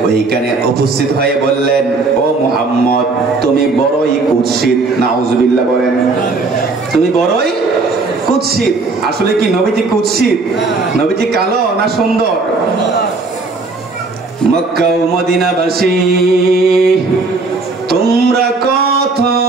ওইখানে উপস্থিত হয়ে বললেন, ও মুহাম্মদ, তুমি বড়ই কুৎসিত। নাউজুবিল্লাহ বলেন, তুমি বড়ই কুৎসিত। আসলে কি নবীজি কুৎসিত? নবীজি কালো না সুন্দর? মক্কা ও মদিনাবাসী, তোমরা কত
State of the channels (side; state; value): left; quieter; 3.7 dB